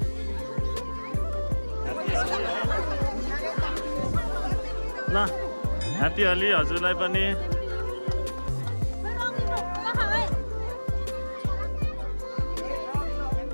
ल ह्याप्पी होली हजुरलाई पनि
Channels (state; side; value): inverted; both; correlation -1.00